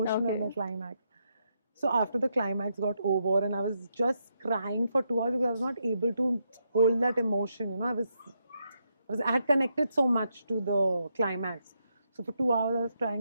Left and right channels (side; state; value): both; inverted; correlation -0.81